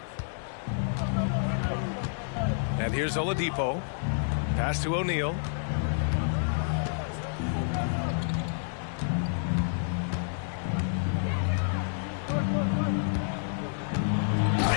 And here's Oladipo. Pass to O'Neal.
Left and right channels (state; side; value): silent; right; digital silence